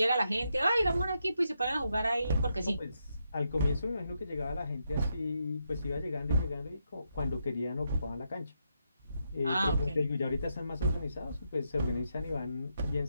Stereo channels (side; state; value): both; inverted; correlation -0.81